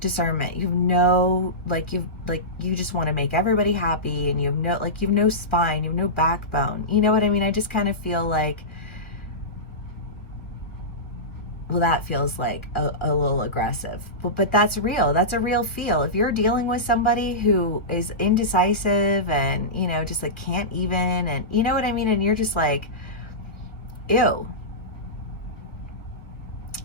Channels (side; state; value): right; late; 1.5 ms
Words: you have no, you just want to make everybody happy, and you have no spine, you have no backbone. You know what I mean? I just kind of feel like, well, that feels like a little aggressive, but that's real. That's a real feel. If you're dealing with somebody who is indecisive and, you know, just like can't even, and you know what I mean? And you're just like, ew,